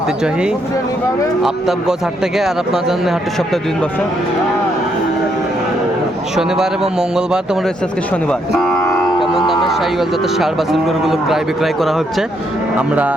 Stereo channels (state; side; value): normal; both; correlation 0.75